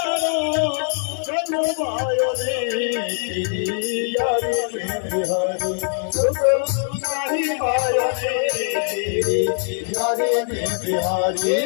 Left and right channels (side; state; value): right; silent; 60 dB below the other